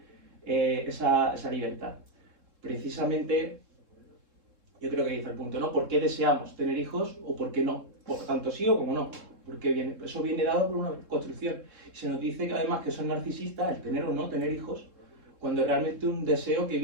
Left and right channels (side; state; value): left; late; 3.7 ms